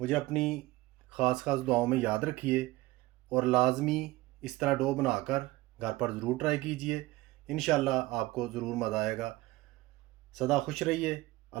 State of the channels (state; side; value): quieter; left; 19.2 dB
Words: अपनी ख़ास दुआओं में याद रखिए और लाजमी इस तरह डो बनाकर घर पर ज़रूर ट्राई कीजिए। इंशाल्लाह आपको ज़रूर मज़ा आएगा। सदा खुश रहिए।